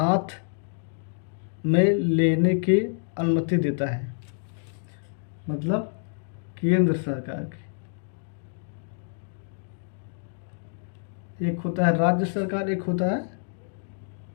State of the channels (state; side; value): silent; right; digital silence